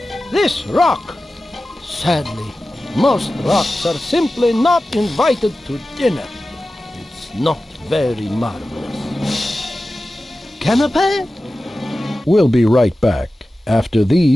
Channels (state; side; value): normal; both; correlation 0.95